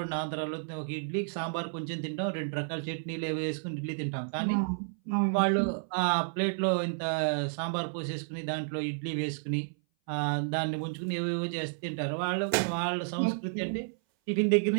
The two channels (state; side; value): silent; left; 57 dB below the other